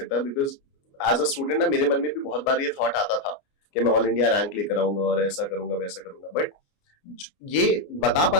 बिकॉज एज अ स्टूडेंट ना मेरे मन में भी बहुत बार ये थॉट आता था कि मैं ऑल इंडिया रैंक लेकर आऊंगा और ऐसा करूंगा वैसा करूंगा। बट ये बता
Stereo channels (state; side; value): late; right; 29 ms